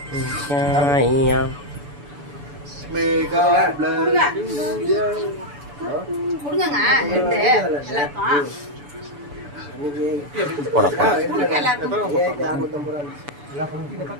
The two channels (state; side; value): late; left; 7.0 ms